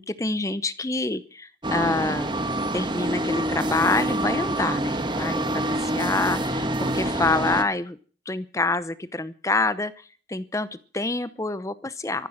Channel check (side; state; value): both; normal; correlation 0.46